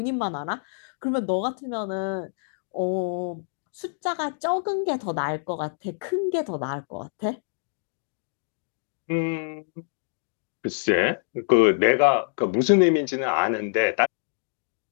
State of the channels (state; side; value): silent; right; digital silence